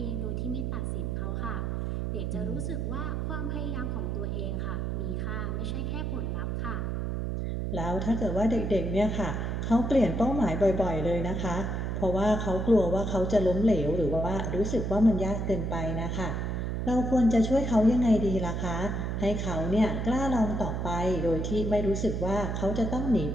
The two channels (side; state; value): right; noise; hum, 1 dB below the sound